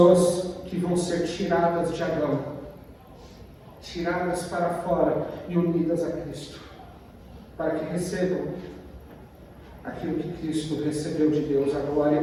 que vão ser tiradas de Adão, tiradas para fora e unidas a Cristo, para que recebam aquilo que Cristo recebeu de Deus, a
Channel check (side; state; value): both; identical; correlation 1.00